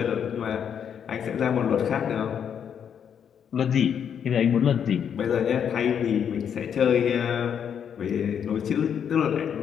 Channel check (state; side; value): quieter; right; 8.1 dB